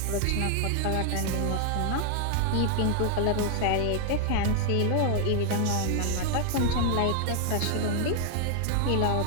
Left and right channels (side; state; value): both; different; correlation 0.00